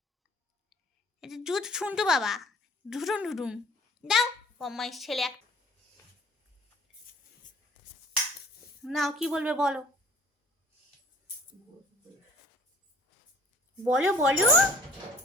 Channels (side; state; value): both; normal; correlation 0.53